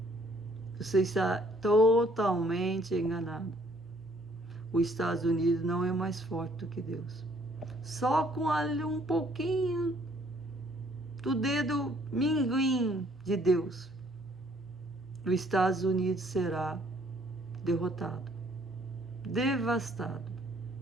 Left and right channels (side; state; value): both; normal; correlation 0.63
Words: Você está totalmente enganado. Os Estados Unidos não é mais forte do que Deus. Só com ali um pouquinho do dedo minguim de Deus, os Estados Unidos será derrotado, devastado,